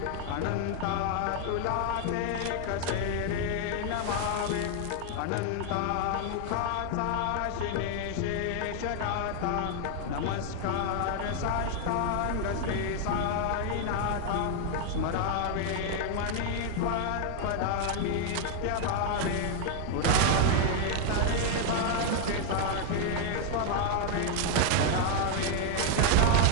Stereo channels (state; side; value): different; both; correlation 0.00